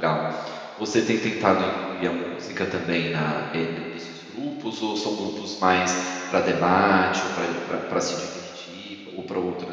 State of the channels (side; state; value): both; identical; correlation 1.00